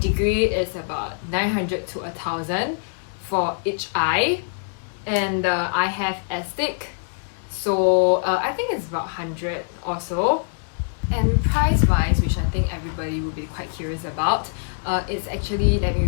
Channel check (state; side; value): silent; right; digital silence